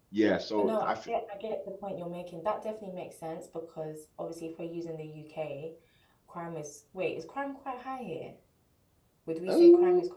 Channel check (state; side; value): identical; both; correlation 1.00